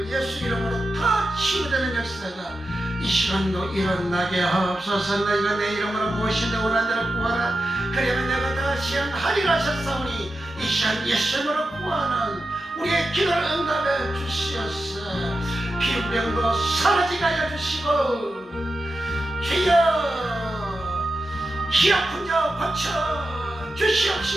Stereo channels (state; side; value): normal; both; correlation 0.90